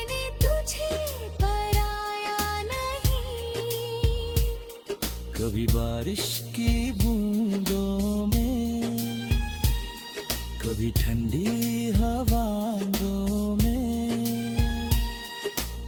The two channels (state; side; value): identical; both; correlation 1.00